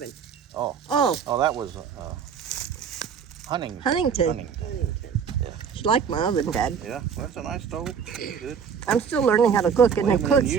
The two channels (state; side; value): quieter; left; 6.8 dB